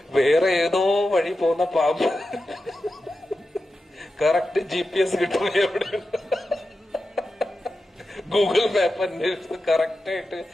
വേറെ ഏതോ വഴി പോകുന്ന പാമ്പ് കറക്റ്റ് GPS കിട്ടും എവിടെ, ഗൂഗിൾ മാപ്പ് അന്വേഷിച്ച് കറക്റ്റ് ആയിട്ട്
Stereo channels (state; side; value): normal; both; correlation 0.91